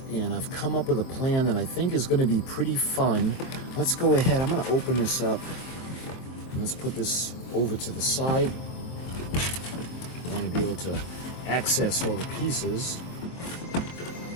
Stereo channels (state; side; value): late; right; 23 ms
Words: and I've come up with a plan that I think is going to be pretty fun. Let's go ahead. I'm going to open this up. And let's put this over to the side. I'm going to be able to access all the pieces.